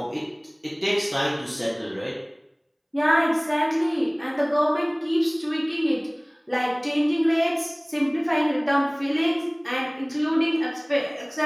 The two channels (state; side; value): identical; both; correlation 1.00